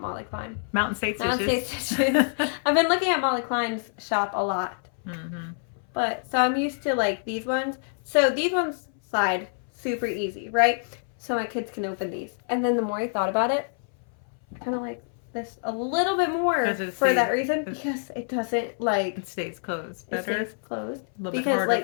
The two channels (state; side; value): silent; right; 59 dB below the other